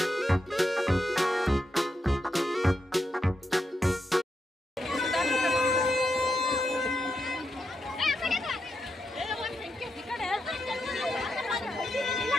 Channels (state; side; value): normal; both; correlation 0.85